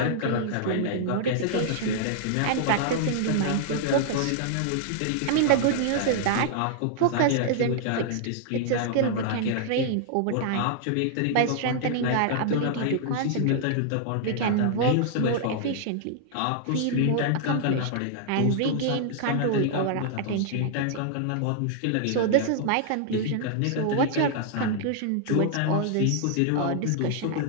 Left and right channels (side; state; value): both; different; correlation -0.01